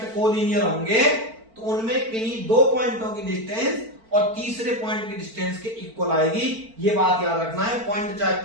कोलिनियर होंगे तो उनमें किन्हीं 2 पॉइंटों की डिस्टेंस और तीसरे पॉइंट की डिस्टेंस के इक्वल आएगी। ये बात याद रखना है। पॉइंट चाहे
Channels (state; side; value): late; left; 4.5 ms